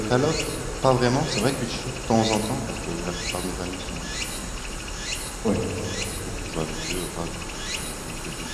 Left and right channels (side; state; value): both; identical; correlation 1.00